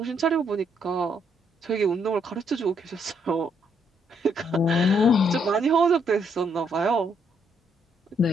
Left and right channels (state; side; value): normal; both; correlation 0.73